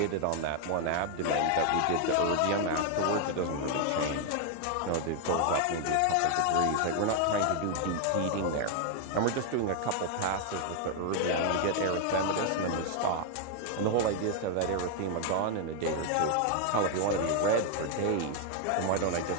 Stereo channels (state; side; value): different; both; correlation 0.00